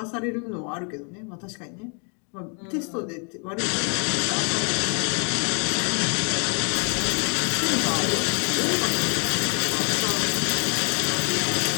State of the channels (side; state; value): right; quieter; 39.0 dB